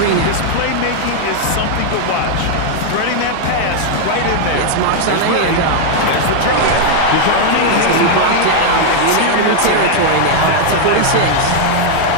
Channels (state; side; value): different; both; correlation 0.00